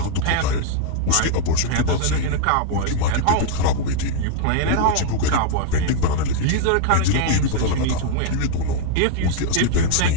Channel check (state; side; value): different; both; correlation 0.00